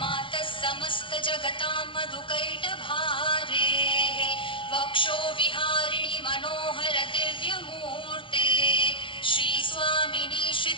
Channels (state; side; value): late; right; 0.25 ms